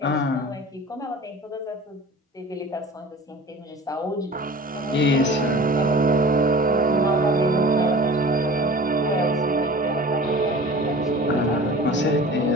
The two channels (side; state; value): both; normal; correlation 0.40